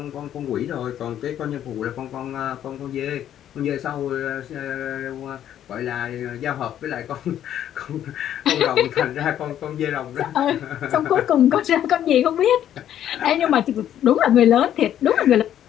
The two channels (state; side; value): quieter; right; 10.8 dB